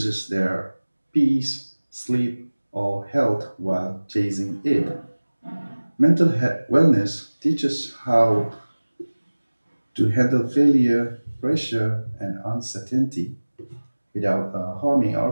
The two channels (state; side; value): inverted; both; correlation -1.00